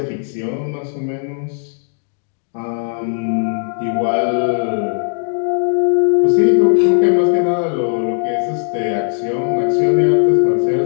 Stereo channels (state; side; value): silent; right; digital silence